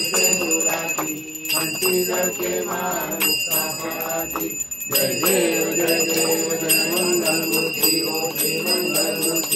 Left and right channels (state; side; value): identical; both; correlation 1.00